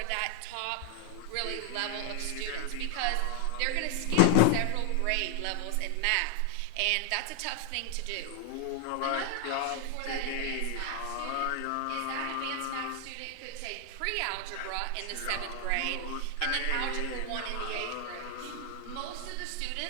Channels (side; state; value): both; different; correlation 0.00